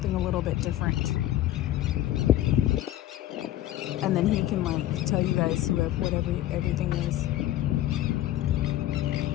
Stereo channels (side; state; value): right; quieter; 13.7 dB